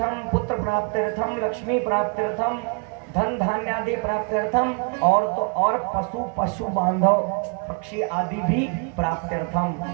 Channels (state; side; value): quieter; left; 38.1 dB